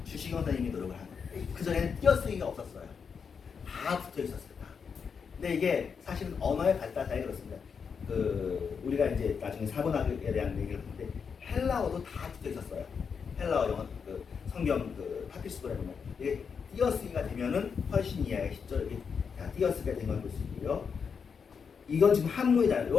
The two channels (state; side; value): quieter; right; 6.2 dB